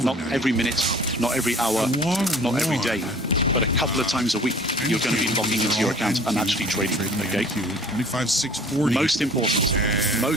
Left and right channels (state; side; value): normal; both; correlation 0.49